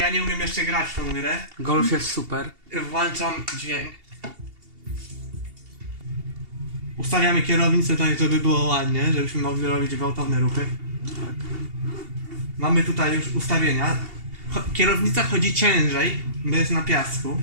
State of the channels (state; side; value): late; left; 2.8 ms